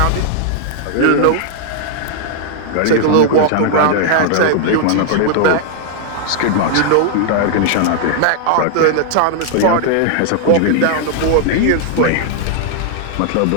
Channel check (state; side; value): different; both; correlation 0.00